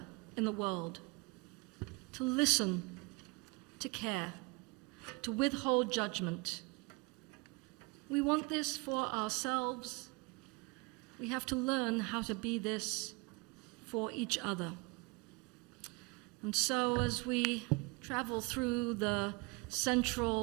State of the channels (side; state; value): left; quieter; 27.6 dB